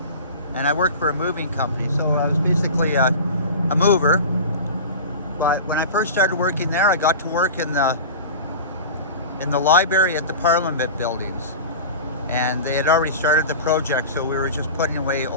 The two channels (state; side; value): inverted; both; correlation -0.33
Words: and I worked for a moving company. So I was basically a mover. But when I first started working there, I got to work in the library at the Parliament buildings. And they had already started the project, so we were just putting away